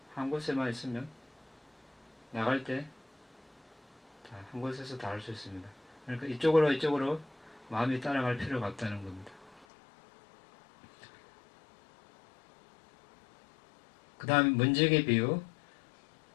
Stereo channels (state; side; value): drops out; right; at 9.7 s